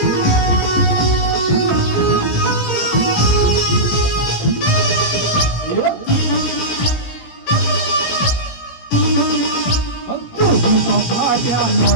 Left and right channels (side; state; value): right; late; 18 ms